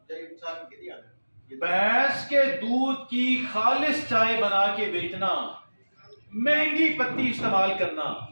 تقریباً سال میں کتنی آتا ہے؟ بھینس کے دودھ کی خالص چائے بنا کے بیچنا، مہنگی پتی استعمال کرنا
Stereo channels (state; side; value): inverted; both; correlation -1.00